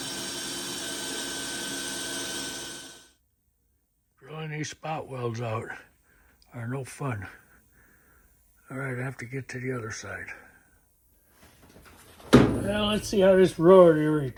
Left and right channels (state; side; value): identical; both; correlation 1.00